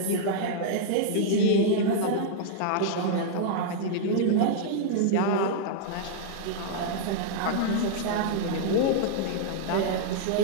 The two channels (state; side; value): different; both; correlation -0.01